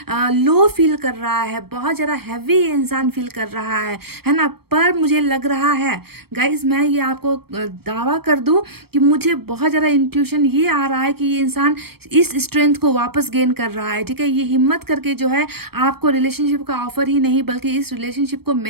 लो फील कर रहा है, बहुत ज़्यादा हैवी इंसान फील कर रहा है ना। पर मुझे लग रहा है गाइस, मैं ये आपको दावा कर दूं कि मुझे बहुत ज़्यादा इंट्यूशन ये आ रहा है कि ये इंसान इस स्ट्रेंथ को वापस गेन कर रहा है। ठीक है, ये हिम्मत करके जो है आपको रिलेशनशिप का ऑफर ही नहीं बल्कि इस रिलेशनशिप को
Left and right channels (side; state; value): left; late; 0.96 ms